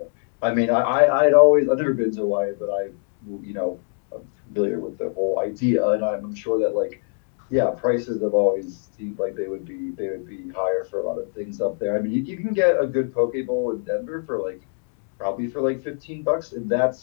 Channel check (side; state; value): right; silent; 58 dB below the other